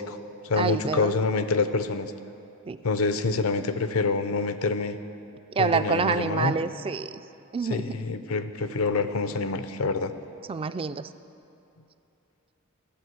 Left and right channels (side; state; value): both; normal; correlation -0.05